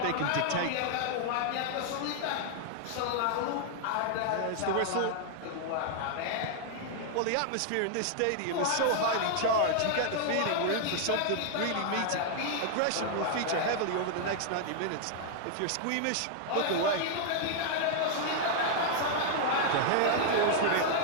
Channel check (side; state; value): both; different; correlation 0.00